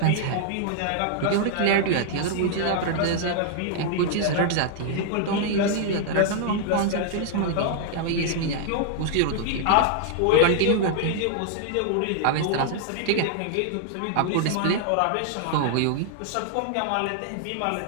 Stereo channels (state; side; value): different; both; correlation -0.01